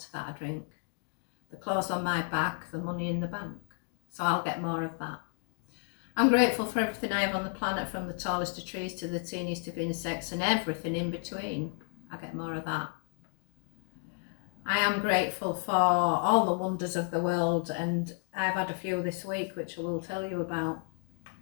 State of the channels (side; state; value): right; silent; 56 dB below the other